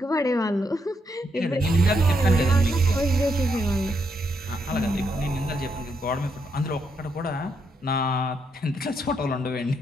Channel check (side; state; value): both; normal; correlation 0.78